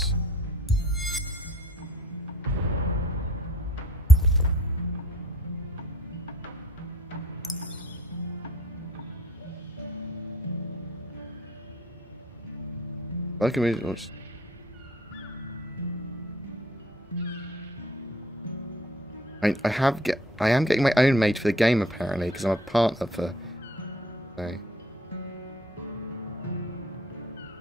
I can read it. I am getting my own made for the game apparently because I'm a partner for. So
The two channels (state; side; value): normal; both; correlation 0.56